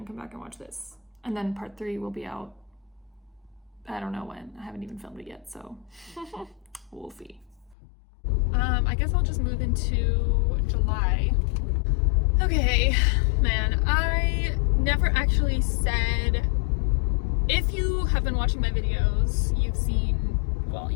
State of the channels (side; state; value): right; drops out; at 7.8 s